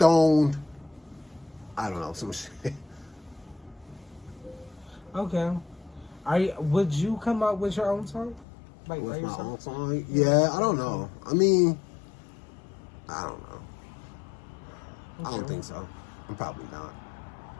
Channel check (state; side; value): drops out; right; at 8.5 s